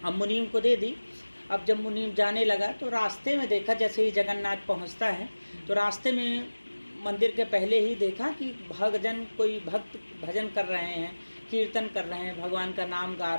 अब मुनीम को दे दी। अब जब मुनीम जाने लगा तो रास्ते में देखा, जैसे ही जगन्नाथ पहुँचता है तो रास्ते में मंदिर के पहले ही देखा कि कोई भक्त भजन कर रहे हैं, कीर्तन कर रहे हैं, भगवान का नाम गा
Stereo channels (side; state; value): both; inverted; correlation -1.00